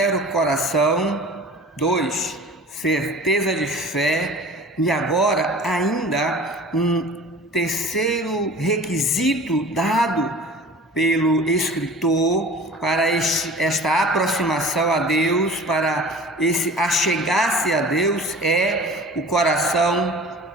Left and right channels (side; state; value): both; normal; correlation 0.41